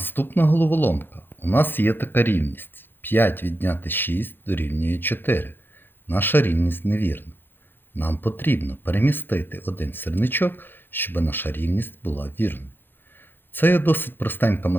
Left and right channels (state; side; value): late; right; 0.099 ms